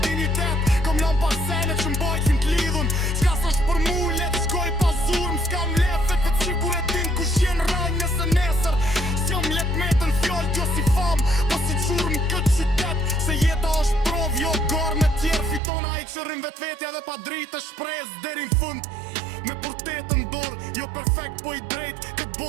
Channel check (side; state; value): left; drops out; at 15.6 s